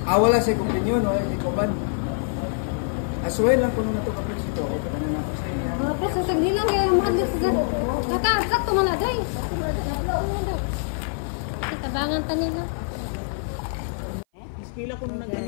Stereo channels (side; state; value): right; silent; 56 dB below the other